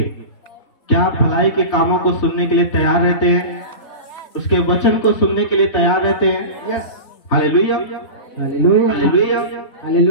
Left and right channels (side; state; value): right; late; 3.7 ms